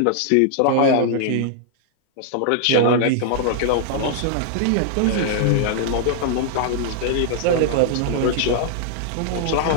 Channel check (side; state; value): both; different; correlation -0.01